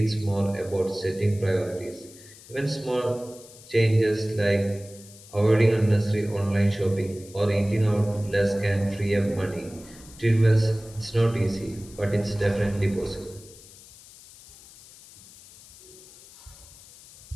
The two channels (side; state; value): left; noise; hiss, 21 dB below the sound